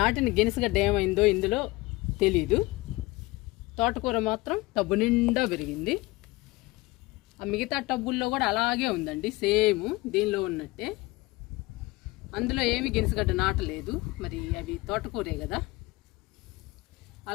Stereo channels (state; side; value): quieter; right; 21.3 dB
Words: గినసగడ్డ ఏమైందో ఇందులో తెలీదు. తోటకూర మాత్రం టబ్బు నిండా పెరిగింది. ఆ మిగతా టబ్బుల్లో కూడా అలాగే ఉందండి, సేమ్ దీనిలో ఉన్నట్టే. అందులో ఏమి గినసగడ్డ నాటలేదు, మరి అవి తోటకూరే కదా,